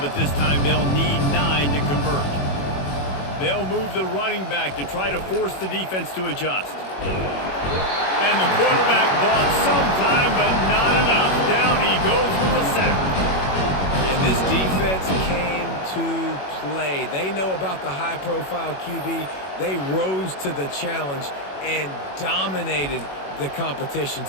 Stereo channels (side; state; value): right; late; 21 ms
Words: this time they'll need 9 to convert. They'll move the running back to try to force the defense to adjust. And the quarterback bought some time, but not enough. Down he goes with the sack. And this defense came to play. They know about the high-profile QB. They rose to the challenge and dominated the competition